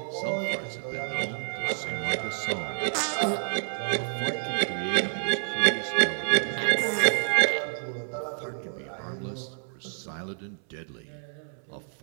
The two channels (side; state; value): left; silent; 59 dB below the other